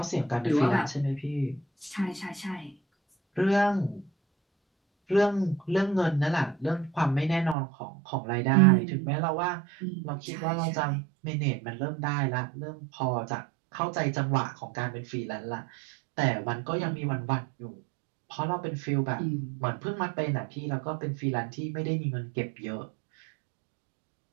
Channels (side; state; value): left; drops out; at 7.6 s